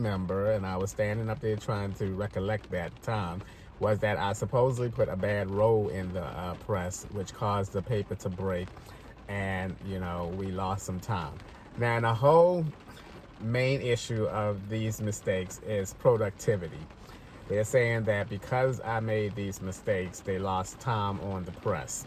and I was standing up there trying to recollect that time, was that I supposedly put a bad roll in the press, which caused the paper to break, and, you know, we lost some time. Now, the whole main issue of these mistakes is productivity. They're saying that because I made these mistakes, they lost time on the press.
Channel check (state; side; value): identical; both; correlation 1.00